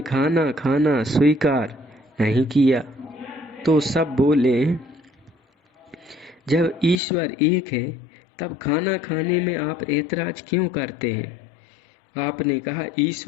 खाना खाना स्वीकार नहीं किया तो सब बोले, जब ईश्वर एक है तब खाना खाने में आप ऐतराज क्यों करते हैं? आपने कहा,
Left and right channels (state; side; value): drops out; right; at 7.0 s